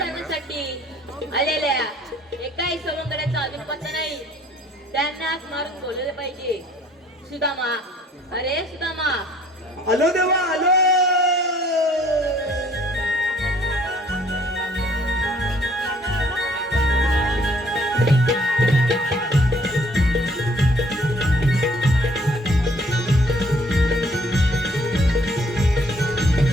आलेल्या एकाही सवंगड्याचा अजून पत्ता नाही. त्यांना हाक मारून बोलले पाहिजे. सुदामा, अरे सुदामा. आलो देवा आलो.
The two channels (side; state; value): both; normal; correlation 0.60